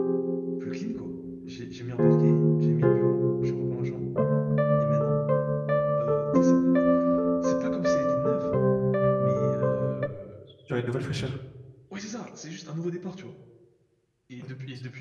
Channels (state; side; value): identical; both; correlation 1.00